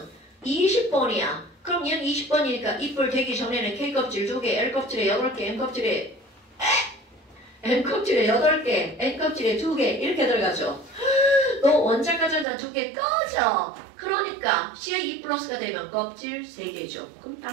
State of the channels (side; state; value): left; drops out; at 12.5 s